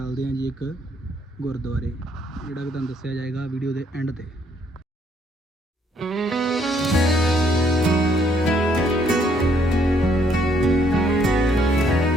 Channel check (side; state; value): both; normal; correlation 0.68